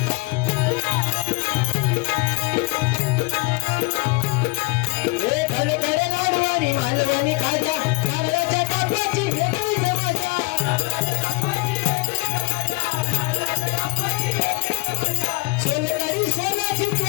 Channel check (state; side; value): quieter; right; 27.3 dB